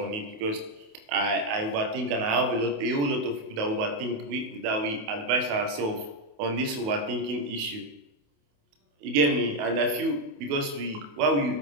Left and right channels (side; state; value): left; late; 28 ms